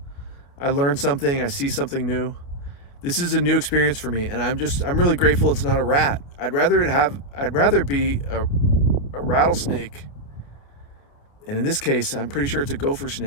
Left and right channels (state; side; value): late; right; 29 ms